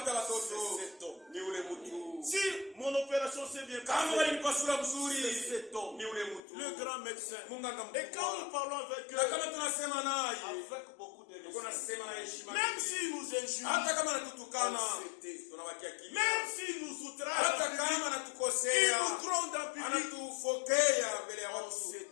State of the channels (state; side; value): drops out; right; at 6.4 s